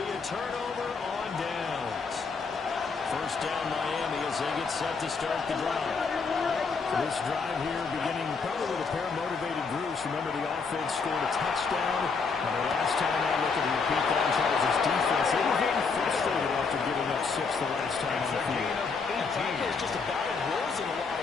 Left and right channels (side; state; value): right; quieter; 4.9 dB